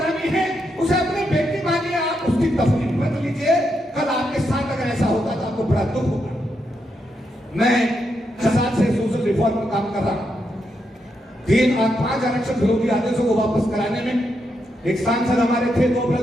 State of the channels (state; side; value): normal; both; correlation 0.82